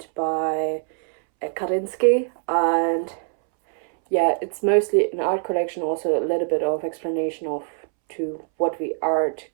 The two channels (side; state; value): left; silent; 63 dB below the other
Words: by Kandinsky, and yeah, it's mostly an art collection, also a little bit of explanation of to what the art